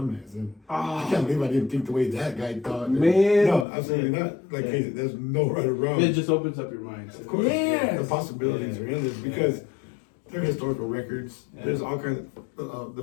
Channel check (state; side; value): drops out; right; at 3.7 s